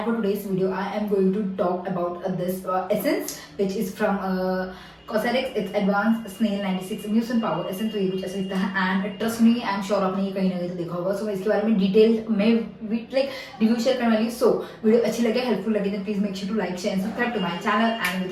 for today's video, I am going to talk about this essence, which is from Cosrx. It's Advanced Snail 96 Mucin Power Essence. तो ये कुछ ऐसा दिखता है and trust me, I'm sure आपने ये कहीं ना कहीं तो देखा होगा. So मैं इसके बारे में डिटेल में रिव्यू शेयर करने वाली हूँ. So वीडियो अच्छी लगे, हेल्पफुल लगे तो please make sure to like, share and subscribe to my channel. And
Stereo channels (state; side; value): identical; both; correlation 1.00